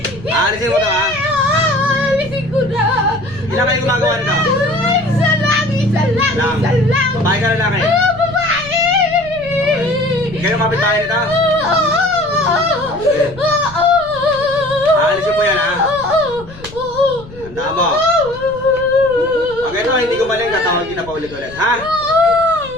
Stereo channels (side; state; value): left; noise; rumble, 18 dB below the sound